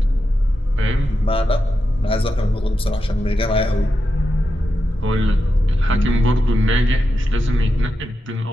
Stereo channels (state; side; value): normal; both; correlation 0.88